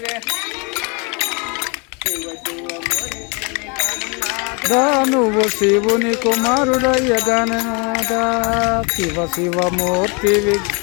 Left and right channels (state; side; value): quieter; right; 32.1 dB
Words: शिव शिव मोरितेवे दानुवु शिवुनि कुमारुडయ్య గణనాథ శివ శివ మూర్తి